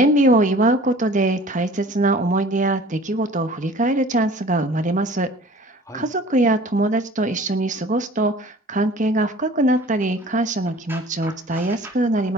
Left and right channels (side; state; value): both; normal; correlation 0.47